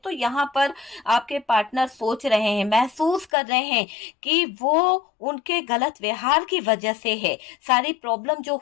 यहाँ पर आपके पार्टनर सोच रहे हैं, महसूस कर रहे हैं कि वो उनके गलत व्यवहार की वजह से है, सारी प्रॉब्लम जो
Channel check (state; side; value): drops out; right; at 3.2 s